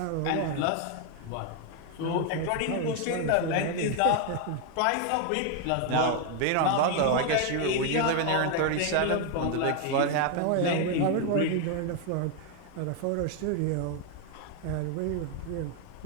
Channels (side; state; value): both; different; correlation 0.01